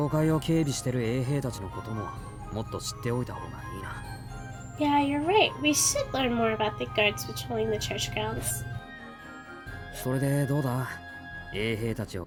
会を警備してる衛兵たちのことももっと知っておいた方がいいな。Yeah, you're right. We should learn more about the guards patrolling the church grounds. それでどうだ？衛兵たちを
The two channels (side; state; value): both; identical; correlation 1.00